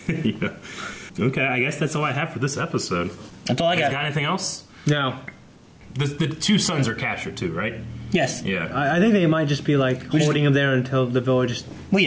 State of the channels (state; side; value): identical; both; correlation 1.00